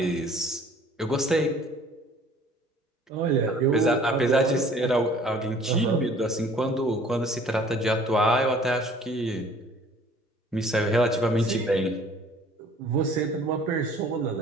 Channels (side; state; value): both; normal; correlation 0.53